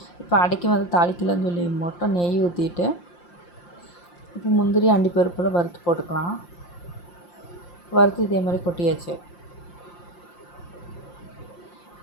இப்போ அடைக்கி வந்து தாளிக்கலன்னு சொல்லி மட்டும் நெய் ஊற்றிட்டு இப்போ முந்திரி அண்டிப்பருப்பில் வறுத்து போட்டுக்கலாம். வறுத்து இதேமாதிரி கொட்டியாச்சு.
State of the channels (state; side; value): late; right; 5.7 ms